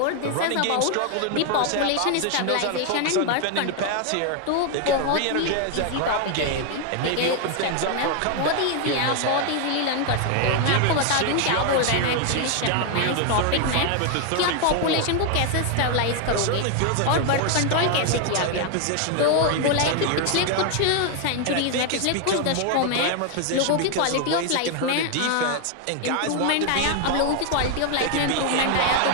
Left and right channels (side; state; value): both; different; correlation 0.00